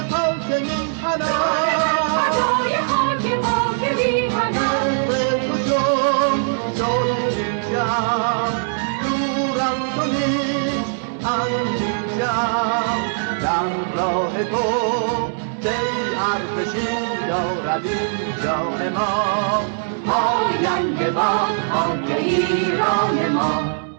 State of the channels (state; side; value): silent; left; digital silence